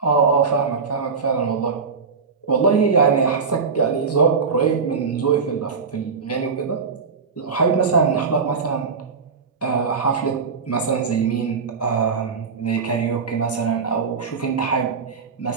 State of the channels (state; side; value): quieter; left; 5.3 dB